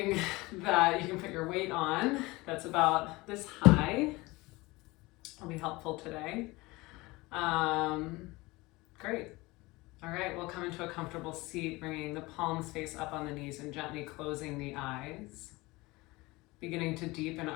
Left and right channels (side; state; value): right; quieter; 22.0 dB